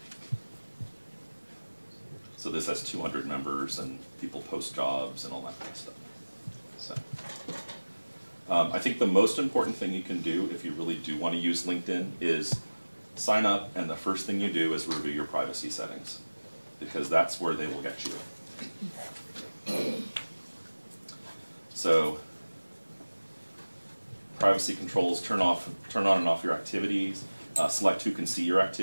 So this has 200 members and people post jobs and all that kind of stuff. So I think the most important thing you can do if you really do want to use LinkedIn is sign up, and the first thing you do is review your privacy settings, because that's where they will get you. So privacy controls, turn on and off your activities, select who can see your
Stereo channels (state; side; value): inverted; both; correlation -1.00